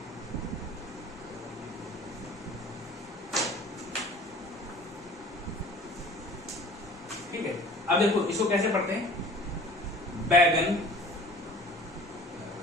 ठीक है, अब देखो इसको कैसे पढ़ते हैं? बैगन,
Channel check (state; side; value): normal; both; correlation 0.46